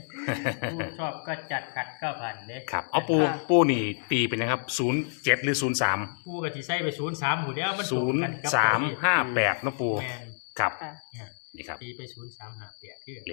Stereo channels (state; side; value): silent; right; digital silence